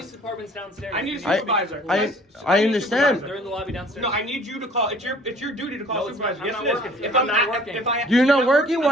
department's downstairs. I need a supervisor. I understand. They're in the lobby downstairs. No, I need you to call. It's your duty to call No, it's supervisor. not. Yes, I'm it not is. working. If I'm not working. You're not working? Why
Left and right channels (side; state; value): both; normal; correlation 0.52